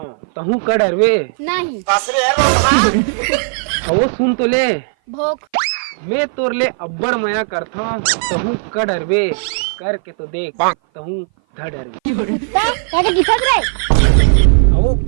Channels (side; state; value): left; silent; 57 dB below the other